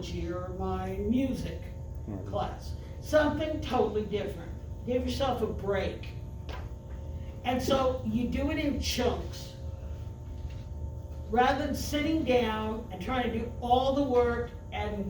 or my music Right. class. Something totally different. Give yourself a break. And so you do it in chunks. Rather than sitting down and trying to do all the work at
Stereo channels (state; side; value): identical; both; correlation 1.00